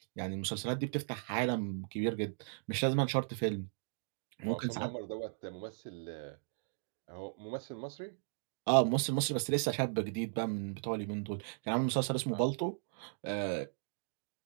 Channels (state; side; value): silent; left; digital silence